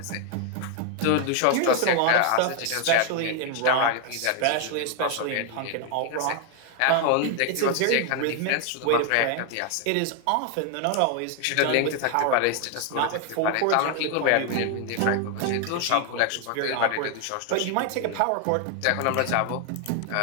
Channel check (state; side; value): different; both; correlation 0.00